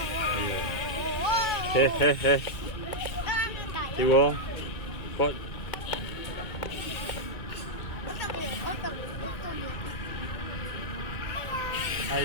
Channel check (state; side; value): late; right; 2.3 ms